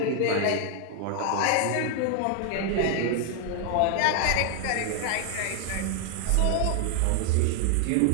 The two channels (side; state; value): both; different; correlation 0.00